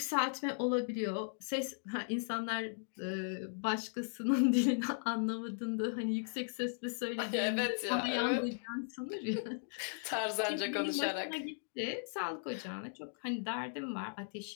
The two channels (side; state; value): right; silent; digital silence